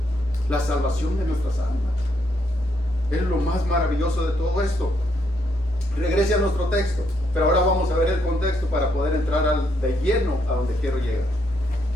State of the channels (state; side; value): normal; both; correlation 0.75